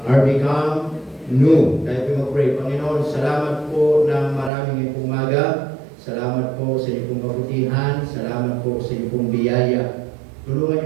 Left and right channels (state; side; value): drops out; left; at 4.5 s